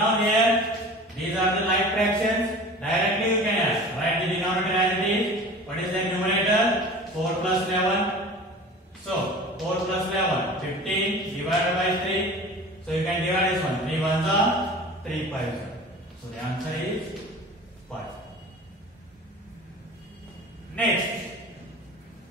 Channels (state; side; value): normal; both; correlation 0.39